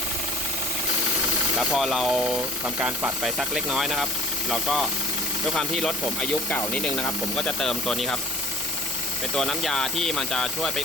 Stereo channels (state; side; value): normal; both; correlation 0.47